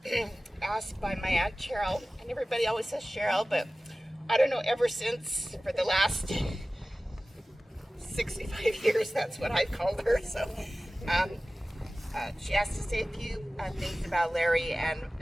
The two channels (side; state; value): both; normal; correlation 0.97